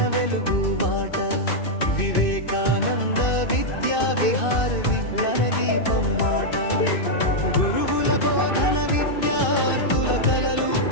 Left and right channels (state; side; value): late; right; 2.6 ms